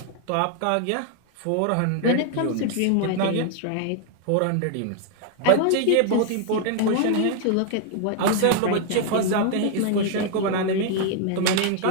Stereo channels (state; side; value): different; both; correlation 0.00